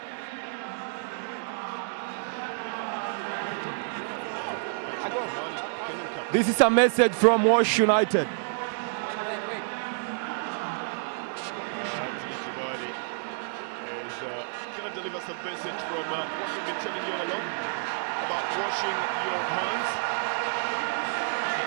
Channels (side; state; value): left; silent; digital silence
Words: This is a message from Wash United. Anthony Kimani is going to deliver some message from what we've been telling you all along about washing your hands.